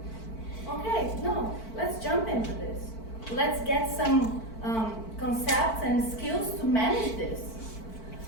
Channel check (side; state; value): right; late; 4.5 ms